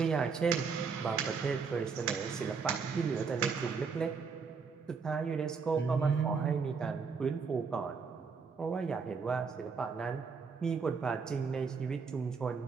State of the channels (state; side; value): quieter; left; 5.4 dB